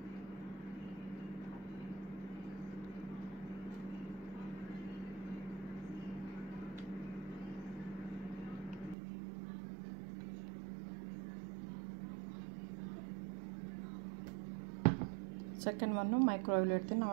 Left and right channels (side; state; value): left; drops out; at 9.0 s